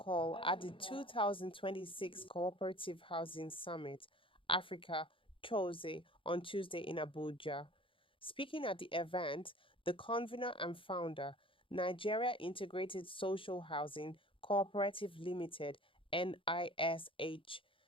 at the 2026 Cooperative Housing Summit, Africa, CHOSE, on Tuesday in Abuja. Speaking at the event, the convener and founder, Nigeria Integrated Social Housing Cooperative Limited, NISH,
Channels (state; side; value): late; right; 0.25 ms